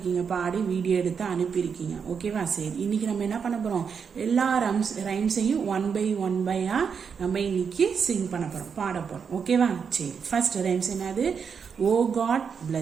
பாடி வீடியோ எடுத்து அனுப்பியிருக்கீங்க. ஓகேவா? சரி, இன்னைக்கு நம்ம என்ன பண்ண போகிறோம், எல்லா ரைம்ஸையும் ஒன் பை நம்ம இன்னைக்கு சிங் பண்ண போகிறோம், பாட போகிறோம். ஓகேவா? சரி, ஃபர்ஸ்ட் ரைம்ஸ் என்னது? Oh God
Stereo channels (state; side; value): quieter; left; 6.4 dB